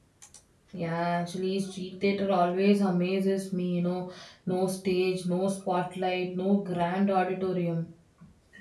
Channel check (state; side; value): identical; both; correlation 1.00